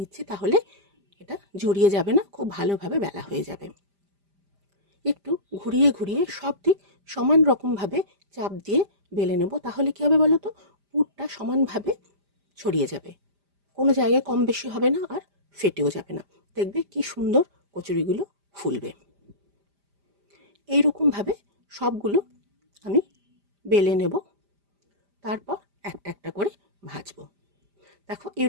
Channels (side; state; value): left; late; 5.0 ms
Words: তাহলে এটা জড়িয়ে যাবে না, খুব ভালোভাবে বেলা হয়ে যাবে। একটু ঘুরিয়ে ঘুরিয়ে সব দিক সমান রকমভাবে চাপ দিয়ে বেলে নেব, তাহলে কী হবে বলো তো, পুরটা সমানভাবে ছড়িয়ে যাবে, কোনো জায়গায় কম বেশি হবে না আর ফেটেও যাবে না। দেখবে কি সুন্দর কচুরিগুলো ফুলবে। এইরকমভাবে সবগুলো আমি বেলে নেব, তারপর একটা একটা করে ভাজবো। দেখো